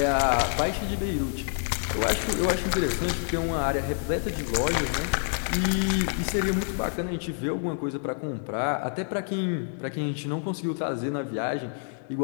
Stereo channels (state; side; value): silent; right; digital silence